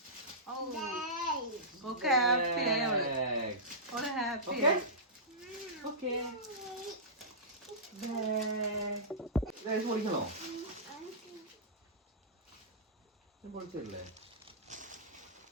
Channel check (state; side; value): normal; both; correlation -0.17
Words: ഓക്കെ ഹാപ്പി ആയി ഓള് ഹാപ്പി ആയി. ഓക്കെ പൊളിക്കണോ? പൊളിച്ചല്ലേ?